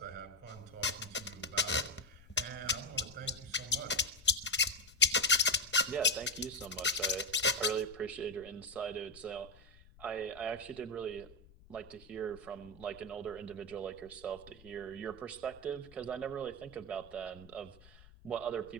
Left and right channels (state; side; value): noise; left; rumble, 22 dB below the sound